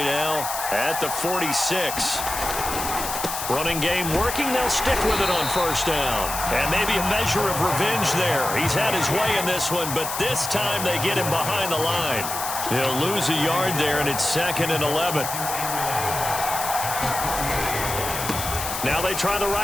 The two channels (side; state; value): left; noise; hiss, 5 dB below the sound